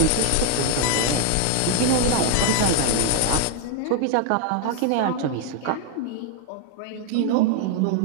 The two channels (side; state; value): both; different; correlation 0.01